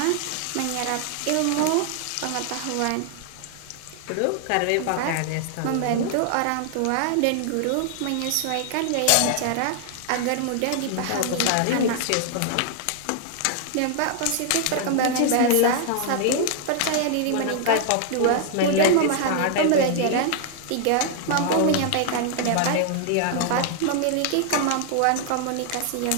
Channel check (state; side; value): different; both; correlation 0.00